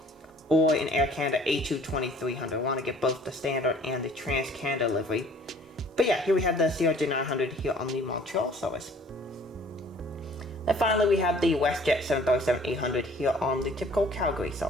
or an Air Canada A220-300. I want to get both the standard and the Trans-Canada livery. But yeah, here we have the CRJ 900 here on the Montreal service. Then finally we have the WestJet 737-800 here on the typical Calgary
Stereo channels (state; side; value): normal; both; correlation 0.53